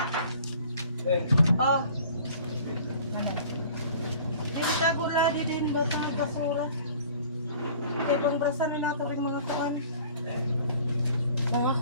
Oh. Dito ako lagi din botang basura. Kaya pang brasan nila ito rin mga kuwan. Mga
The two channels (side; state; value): both; inverted; correlation -0.49